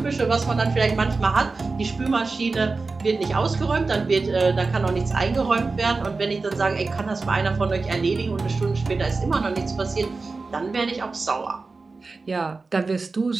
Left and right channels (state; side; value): quieter; left; 3.9 dB